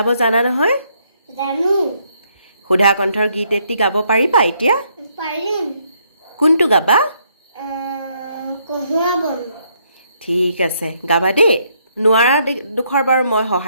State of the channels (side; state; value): both; inverted; correlation -0.72